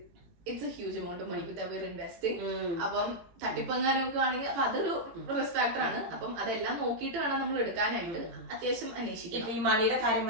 It's a huge amount of money with അവർ ഇൻവെസ്റ്റിംഗ്. അപ്പം തട്ടിപ്പങ്ങാനൊക്കെ ആണെങ്കിൽ അപ്പൊ അതൊരു റിസ്ക് ഫാക്ടർ ആണ്. അപ്പം അതെല്ലാം നോക്കിയിട്ട് വേണം നമ്മൾ എടുക്കാനായിട്ട് അത്യാവശ്യം അന്വേഷിക്കും. ഇപ്പൊ ഈ മണിയുടെ കാര്യം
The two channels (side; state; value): left; late; 18 ms